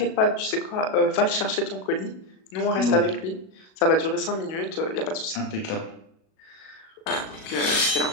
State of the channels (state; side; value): late; right; 37 ms